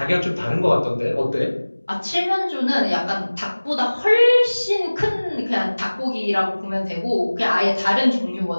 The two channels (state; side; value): inverted; both; correlation -1.00